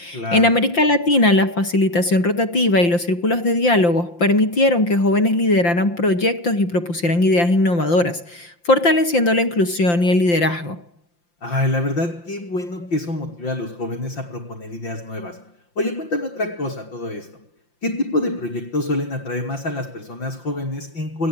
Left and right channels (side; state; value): right; late; 5.8 ms